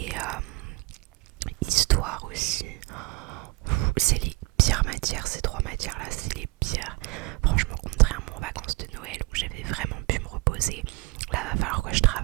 histoire aussi. C'est les pires matières, ces 3 matières là, c'est les pires. Franchement, contrairement aux vacances de Noël où j'avais vraiment pu me reposer, là va falloir que je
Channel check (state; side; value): quieter; left; 24.4 dB